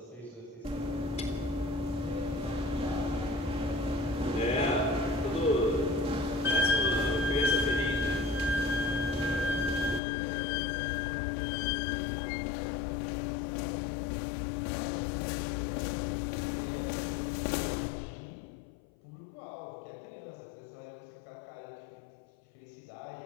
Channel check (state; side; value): drops out; right; at 10.0 s